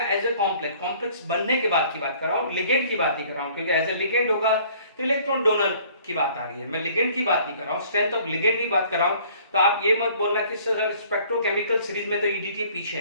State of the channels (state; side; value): inverted; both; correlation -0.55